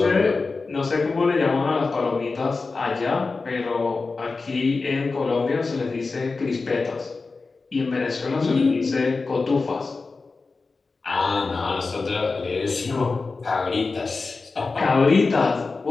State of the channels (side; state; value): right; quieter; 4.0 dB